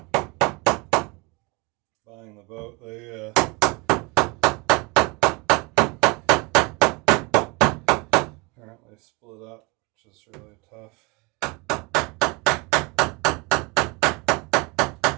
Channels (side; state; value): left; quieter; 27.3 dB